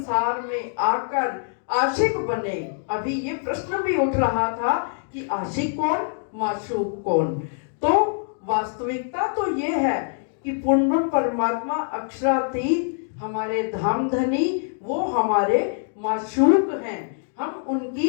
में आकर आशिक बने। अभी ये प्रश्न भी उठ रहा था कि आशिक कौन, माशूक कौन। तो वास्तविकता तो ये है कि पूर्ण परमात्मा अक्षरातीत हमारे धामधनी, वो हमारे माशूक हैं, हम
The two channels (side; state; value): right; silent; digital silence